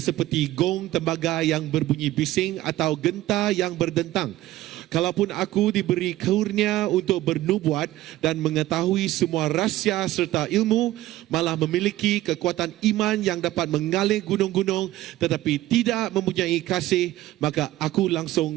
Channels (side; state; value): left; quieter; 15.6 dB